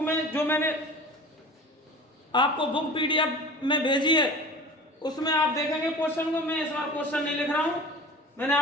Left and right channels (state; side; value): normal; both; correlation 0.38